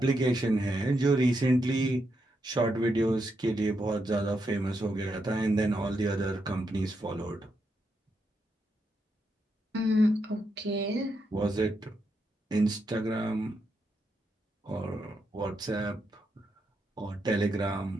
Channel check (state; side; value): normal; both; correlation 0.82